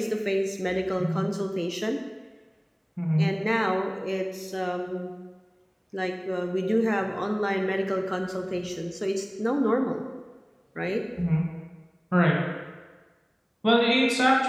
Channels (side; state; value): both; identical; correlation 1.00